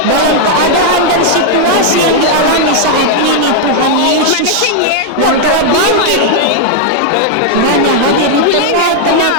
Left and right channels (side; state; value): both; different; correlation -0.01